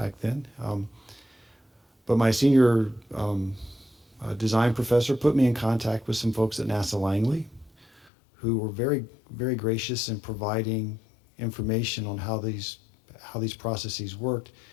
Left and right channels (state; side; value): drops out; right; at 8.1 s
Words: then. But my senior design professor put me in contact with some folks at NASA Langley who were very, very gracious in providing information on how these processes worked,